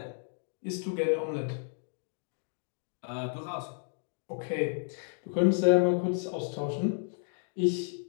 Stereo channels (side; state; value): right; silent; digital silence